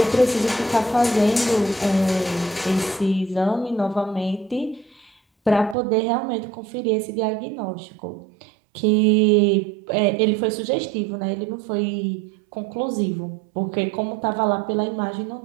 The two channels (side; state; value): left; drops out; at 5.8 s